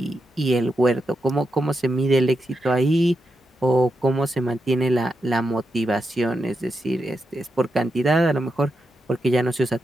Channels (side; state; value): both; normal; correlation 0.86